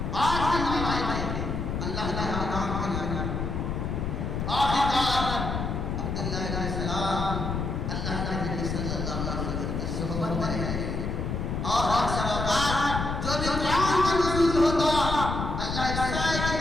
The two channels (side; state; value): left; noise; rumble, 2 dB below the sound